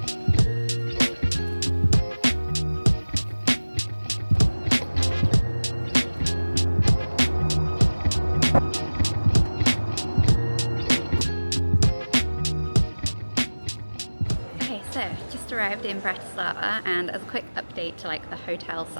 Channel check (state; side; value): inverted; both; correlation -1.00